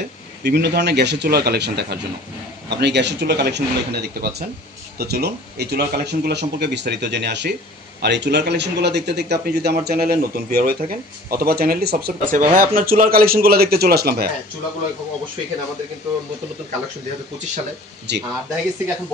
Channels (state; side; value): normal; both; correlation 0.47